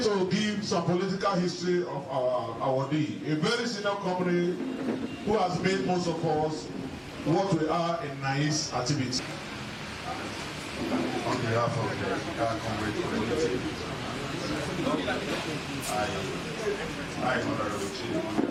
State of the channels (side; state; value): both; identical; correlation 1.00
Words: to give some political history of our Odi, a very senior company who has made most of us what we are in nice activity. On behalf of the Comr community, I Honorable Chief